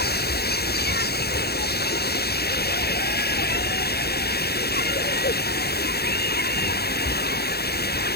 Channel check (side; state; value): right; late; 0.46 ms